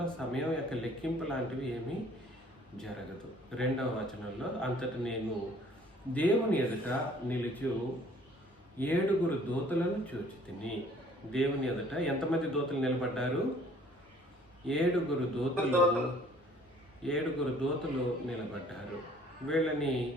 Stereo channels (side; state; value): both; normal; correlation 0.56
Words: సమయం యొక్క లెక్కింపు లాంటివి ఏమీ జరగదు. 2వ వచనంలో అంతటి నేను దేవుని ఎదుట నిలుచు 7 దూతలను చూచితిని. దేవుని ఎదుట ఎంతమంది దూతలు నిలబడ్డారు? 7 దూతలు నిలబడ్డారు. వీళ్ళని